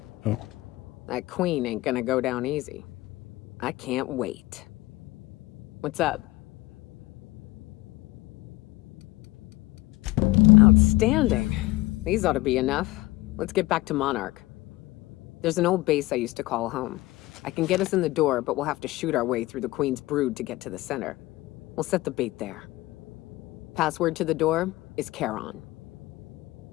Oh. That queen ain't gonna go down easy. I can't wait. What's up? Outstanding. These ought to be enough. Let's get back to Monarch. There's an old base I used to call home. I can get us in the door, but we'll have to shoot our way through the Queen's brood to get to the center. We'll set the bait there. Password to the door is Charon.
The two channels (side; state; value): right; quieter; 19.3 dB